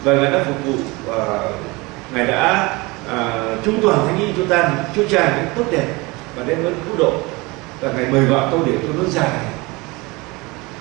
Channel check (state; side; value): quieter; left; 24.4 dB